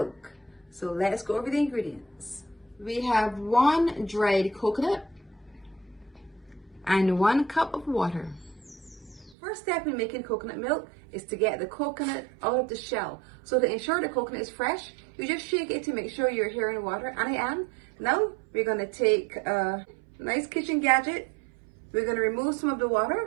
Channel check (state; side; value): drops out; left; at 9.3 s